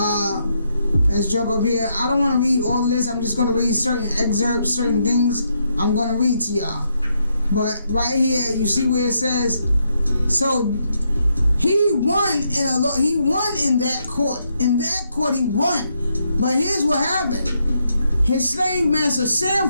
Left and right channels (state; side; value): inverted; both; correlation -0.78